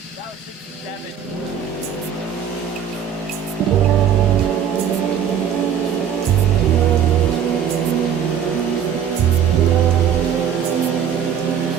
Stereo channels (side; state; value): left; quieter; 8.5 dB